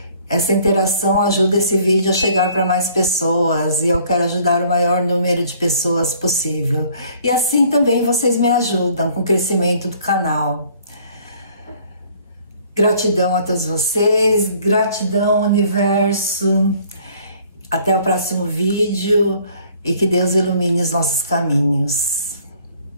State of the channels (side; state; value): both; inverted; correlation -0.57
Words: Essa interação ajuda esse vídeo a chegar para mais pessoas e eu quero ajudar o maior número de pessoas possível. E assim também vocês me ajudam com o crescimento do canal. Gratidão a todos vocês, gratidão universo. Até o próximo vídeo e que Deus ilumine os nossos caminhos.